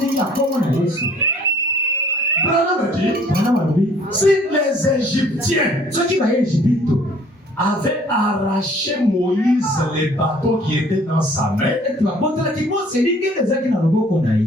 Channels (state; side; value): normal; both; correlation 0.56